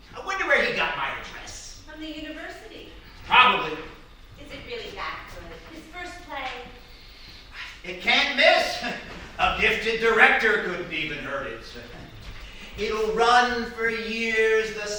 I wonder where he got my address. From the university. Probably. Is it really that good? His first play? It can't miss. A gifted director couldn't even hurt it. It'll run for years. The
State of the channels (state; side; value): identical; both; correlation 1.00